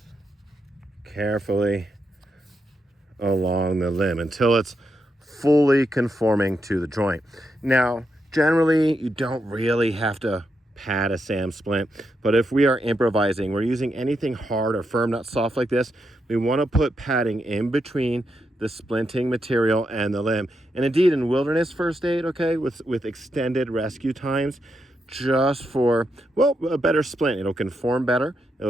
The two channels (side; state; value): both; normal; correlation 0.83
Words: carefully along the limb until it's fully conforming to the joint. Now, generally, you don't really have to pad a SAM splint, but if we are improvising, we're using anything hard or firm, not soft like this, we want to put padding in between the splinting material and the limb. And indeed, in wilderness first aid, okay, with extended rescue times, just for, well, a better splint. It'll conform better,